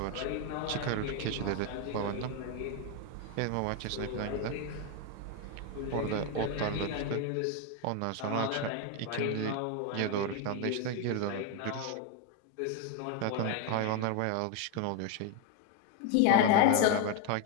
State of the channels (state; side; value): different; both; correlation 0.01